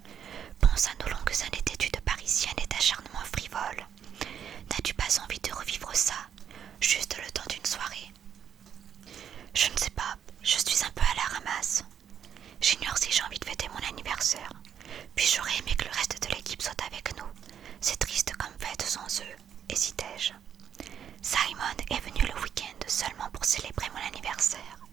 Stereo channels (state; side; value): quieter; left; 8.7 dB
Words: Pense à nos longues années d'études parisiennes et d'acharnement frivole. N'as-tu pas envie de revivre ça, juste le temps d'une soirée? Je ne sais pas, je suis un peu à la ramasse. J'ignore si j'ai envie de fêter mon anniversaire. Puis j'aurais aimé que le reste de l'équipe soit avec nous. C'est triste comme fête sans eux, hésitai-je. Simon est venu le week-end seulement pour célébrer mon anniversaire.